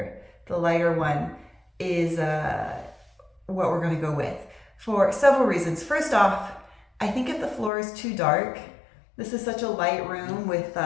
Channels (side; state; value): right; drops out; at 7.7 s